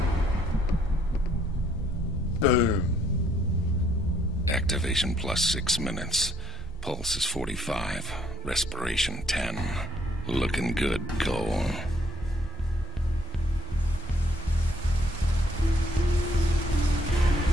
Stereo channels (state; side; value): normal; both; correlation 0.69